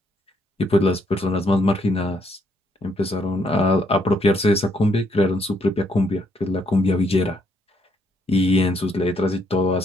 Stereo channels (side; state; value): both; normal; correlation 0.71